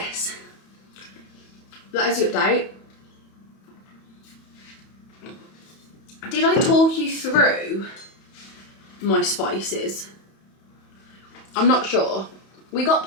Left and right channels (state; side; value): late; right; 31 ms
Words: that is the update. Did I talk you through my spices? I'm not sure. We got